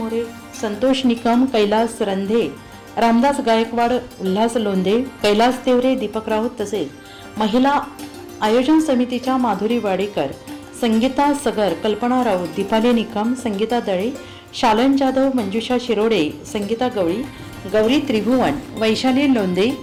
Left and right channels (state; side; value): identical; both; correlation 1.00